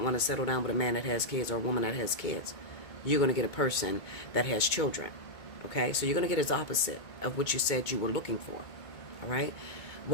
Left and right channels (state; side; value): late; right; 2.2 ms